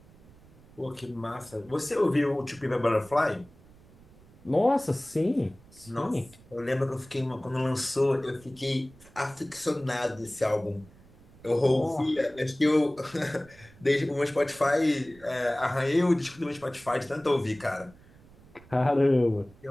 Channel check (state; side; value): noise; right; rumble, 24 dB below the sound